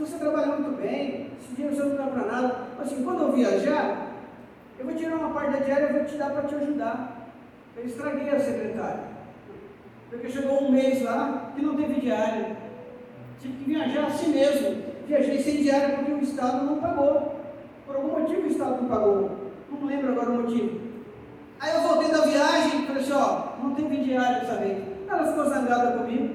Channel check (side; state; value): both; identical; correlation 1.00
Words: você trabalha muito bem, esse dinheiro você não dá para nada. Assim, quando eu viajar, eu vou tirar uma parte da diária e vou te dar para te ajudar. Eu estraguei a secretária, porque chegou um mês lá que não teve diária, tive que viajar assim mesmo, viajei sem diária porque o Estado não pagou, por algum motivo o Estado não pagou, não lembro agora o motivo. Aí eu voltei da viagem e falei assim, não teve diária dessa vez. Ela ficou zangada comigo,